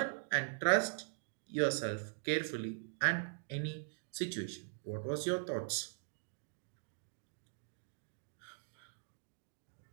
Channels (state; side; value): silent; left; digital silence